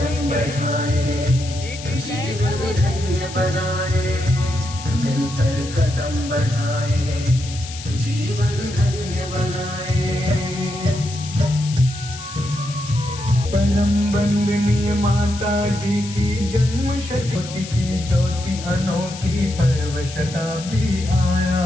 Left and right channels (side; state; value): left; noise; hiss, 13 dB below the sound